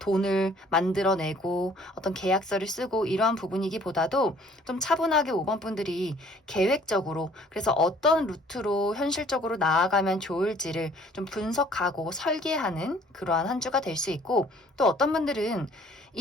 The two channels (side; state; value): both; normal; correlation 0.56